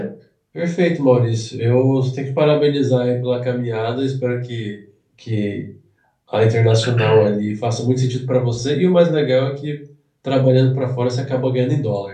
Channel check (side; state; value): both; identical; correlation 1.00